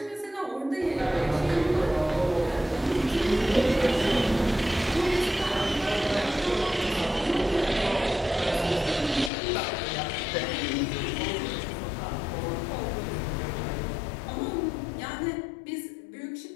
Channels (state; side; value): drops out; right; at 9.3 s